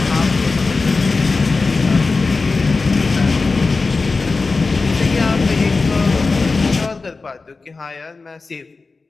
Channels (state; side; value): quieter; right; 3.9 dB